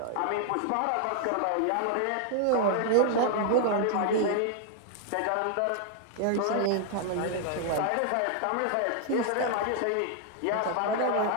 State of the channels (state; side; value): different; both; correlation 0.00